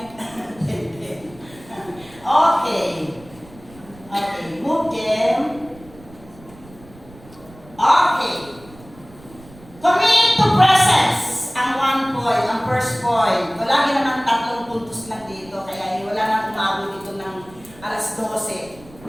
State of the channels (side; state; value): right; noise; rumble, 22 dB below the sound